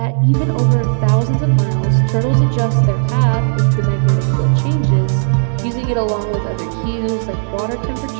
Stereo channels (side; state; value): left; silent; digital silence